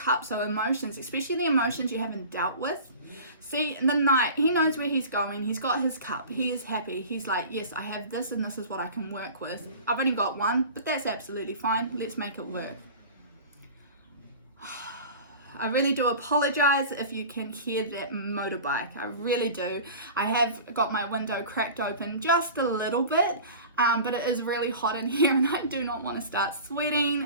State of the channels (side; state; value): both; inverted; correlation -0.38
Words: are emotions, especially the emotions you haven't dealt with. See, the Knight, he knows where he's going. He's got his cup. He is happy. He's like, yes, I have this and this is what I can work with. I've only got one, but that's absolutely fine. Let's make it work. I really do apologize if you can hear that motorbike. I really do. I have got my window cracked open just a little bit, but it is really hot in here and I do not want to start